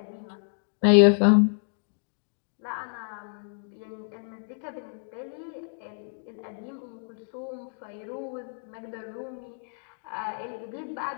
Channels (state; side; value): silent; right; digital silence